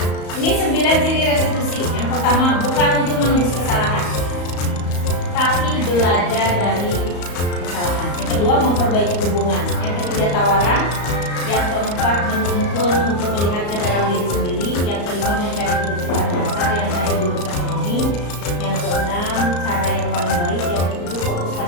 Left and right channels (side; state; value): right; late; 34 ms